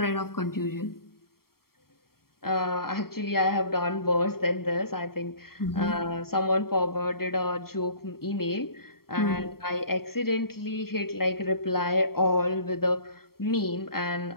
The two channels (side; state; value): right; late; 0.93 ms